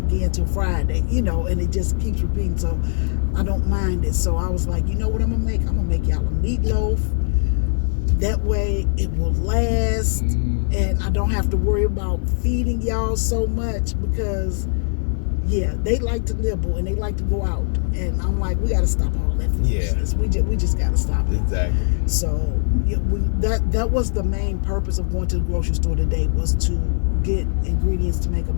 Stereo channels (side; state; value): right; silent; 65 dB below the other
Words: again till Friday, and it just keeps repeating. So I don't mind it. So I was like, you know what I'm going to make? I'm going to make y'all a meatloaf. That way it will last, and I don't have to worry about feeding y'all so much, because yeah, they like to nibble and they like to go out, and I'm like, we got to stop all that foolishness. We just got to stop it. Exactly. So that was the main purpose of going to the grocery store today, was to get ingredients to make a